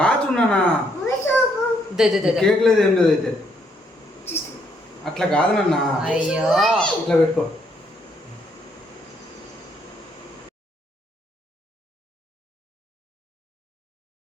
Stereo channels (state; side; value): normal; both; correlation 0.72